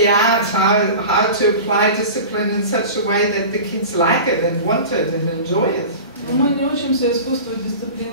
art, how to apply discipline in such a way that the kids like it and want it and enjoy it. Но мы не учимся искусству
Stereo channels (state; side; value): inverted; both; correlation -0.34